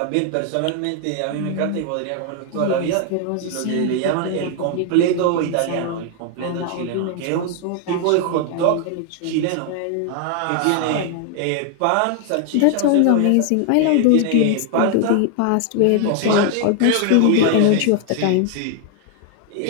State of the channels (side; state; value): both; different; correlation 0.00